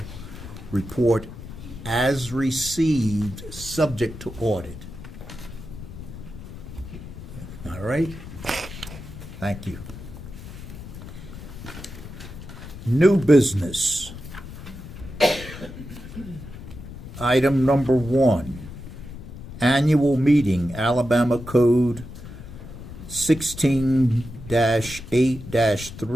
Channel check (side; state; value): left; noise; rumble, 13 dB below the sound